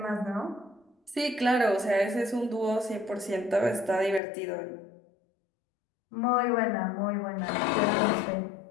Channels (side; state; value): right; drops out; at 4.2 s